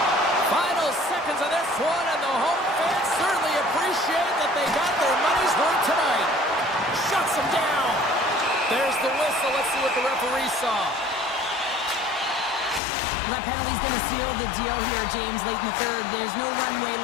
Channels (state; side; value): drops out; right; at 12.8 s